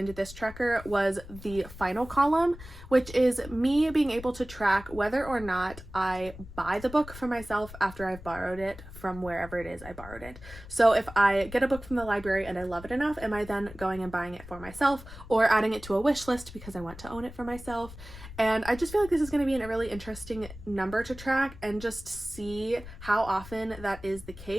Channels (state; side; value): noise; left; rumble, 15 dB below the sound